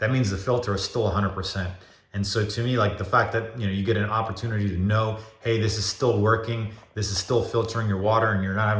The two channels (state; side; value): identical; both; correlation 1.00